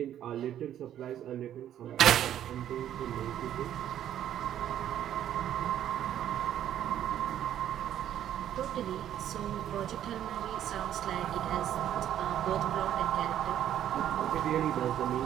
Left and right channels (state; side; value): quieter; left; 11.0 dB